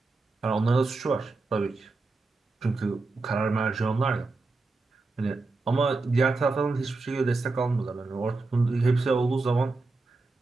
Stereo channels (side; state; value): left; quieter; 3.6 dB